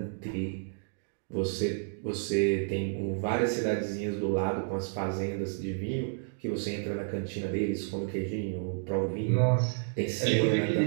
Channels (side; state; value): left; silent; digital silence